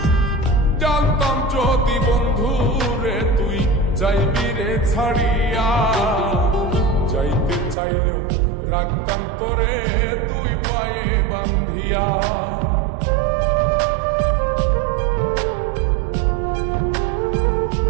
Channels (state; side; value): drops out; left; at 7.8 s